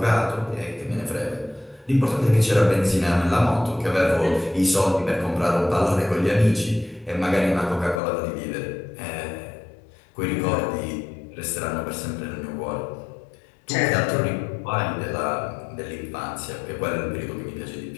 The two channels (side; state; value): right; drops out; at 8.0 s